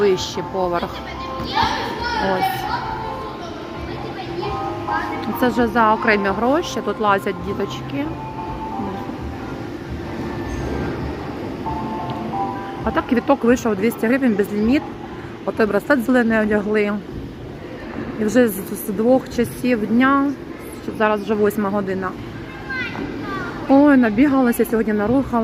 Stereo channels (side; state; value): both; identical; correlation 1.00